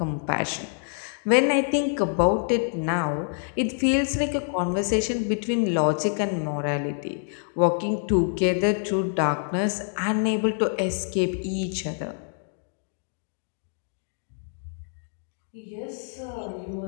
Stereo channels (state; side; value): silent; right; 61 dB below the other